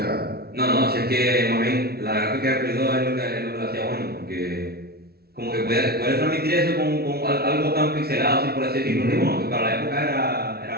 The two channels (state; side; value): late; left; 0.45 ms